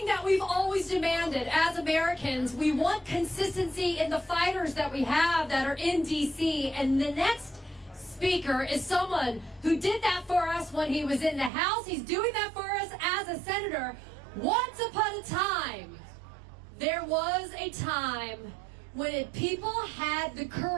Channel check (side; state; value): left; drops out; at 11.5 s